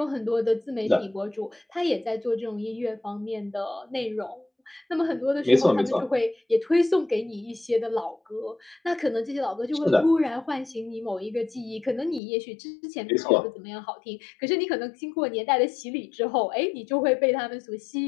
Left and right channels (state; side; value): drops out; right; at 12.2 s